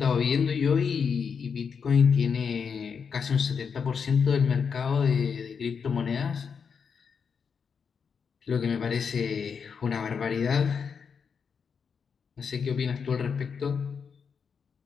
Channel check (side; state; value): right; quieter; 6.3 dB